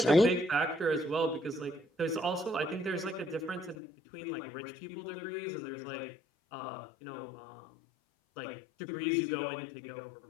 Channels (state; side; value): drops out; right; at 3.8 s